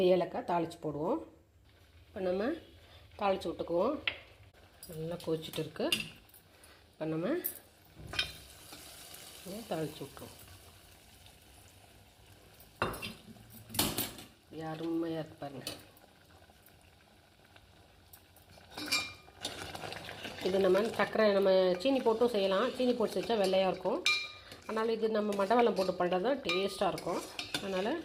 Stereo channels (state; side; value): identical; both; correlation 1.00